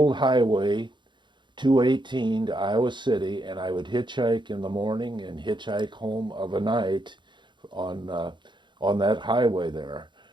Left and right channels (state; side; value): late; left; 0.23 ms